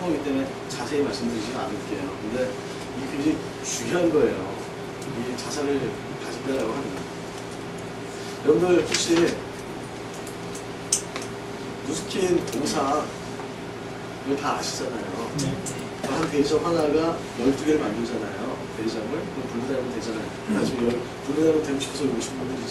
거기 때문에 자세히 말씀드리지는 않을게요. 근데 이게 굉장히 중요한 거예요. 이 자산을 가진다라고 하는 거. 여러분들 혹시 누스킨 동상 이거 다 아시잖아요. 한 대리점 하나가 12개를 만들잖아요. 대리점을. 그럼 분리되면 되잖아요. 나중에 분리되면 되고 싶어서 오신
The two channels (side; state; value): both; identical; correlation 1.00